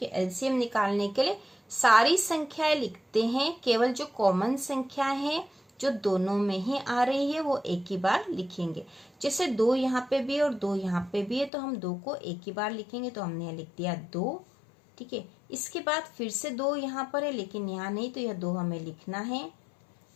है, एलसीएम निकालने के लिए सारी संख्याएं लिखते हैं, केवल जो कॉमन संख्या है जो दोनों में ही आ रही है वो एक ही बार लिखेंगे। जैसे 2 यहाँ पे भी और 2 यहाँ पे भी है तो हम 2 को एक ही बार लिखेंगे, तो हमने लिख दिया 2। ठीक है, इसके बाद फिर से 2 यहाँ पर है लेकिन यहाँ नहीं, तो यह 2 हमें लिखना है।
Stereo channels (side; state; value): right; drops out; at 11.5 s